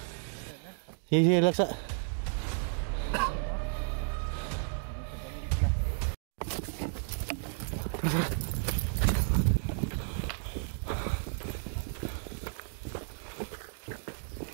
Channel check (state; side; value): silent; left; digital silence